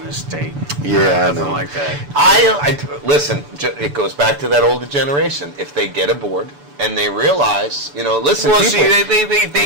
this state. Yeah, I nothing know. like that. Listen, it goes back to that older generation. If they get aboard and they realize, listen, Well, people, see, they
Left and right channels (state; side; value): late; left; 6.9 ms